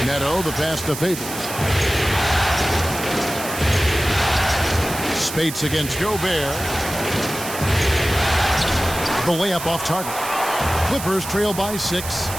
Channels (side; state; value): right; noise; hiss, 9 dB below the sound